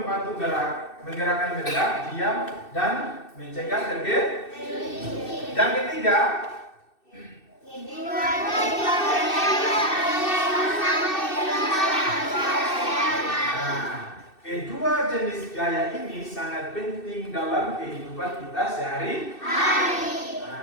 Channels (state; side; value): late; right; 2.6 ms